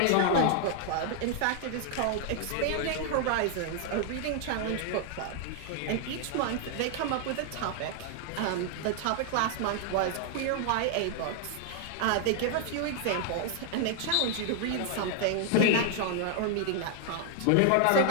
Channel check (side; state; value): both; different; correlation 0.00